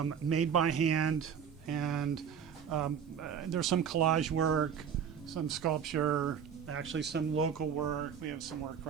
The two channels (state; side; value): quieter; left; 7.7 dB